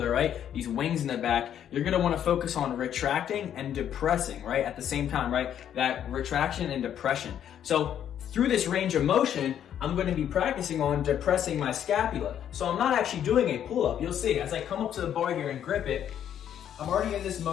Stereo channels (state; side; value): quieter; right; 9.9 dB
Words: right? These wings in the back, you're gonna wanna focus on retracting and depressing, right? At the same time, right? That retraction and depression. So through this range of motion, I'm gonna be practicing on depressing my scapula. So I'm not actually doing a pull-up. You'll see, as I come up to the bar here and grip it, I'm already in this